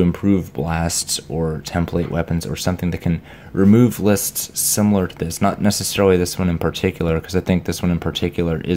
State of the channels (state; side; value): identical; both; correlation 1.00